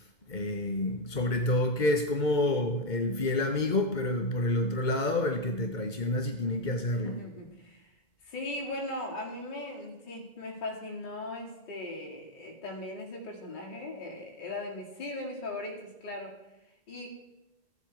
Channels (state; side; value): late; right; 2.2 ms